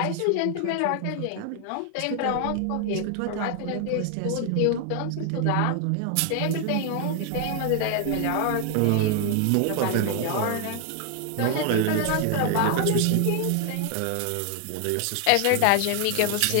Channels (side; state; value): both; different; correlation 0.00